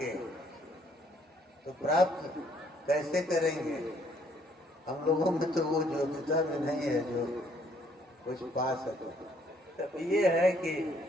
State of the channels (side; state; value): both; normal; correlation 0.65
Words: तो प्राप्त कैसे करेंगे? हम लोगों में तो वो योग्यता भी नहीं है जो कुछ पा सके। तब ये है कि